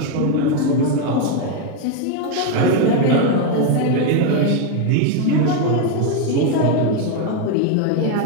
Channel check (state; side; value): different; both; correlation 0.02